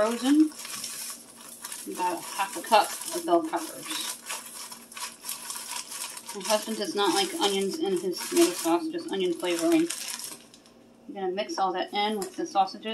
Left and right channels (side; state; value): both; identical; correlation 1.00